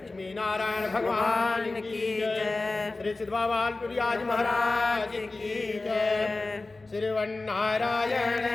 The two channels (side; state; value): right; quieter; 3.3 dB